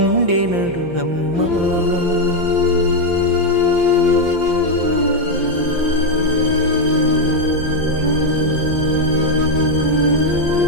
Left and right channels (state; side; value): late; left; 5.8 ms